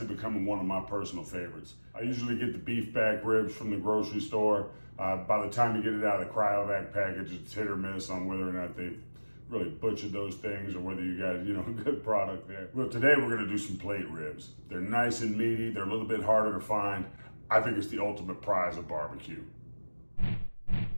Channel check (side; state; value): both; inverted; correlation -1.00